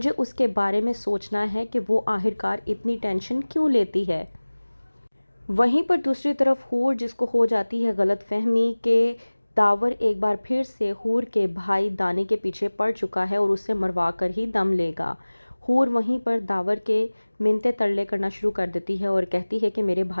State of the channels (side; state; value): both; inverted; correlation -1.00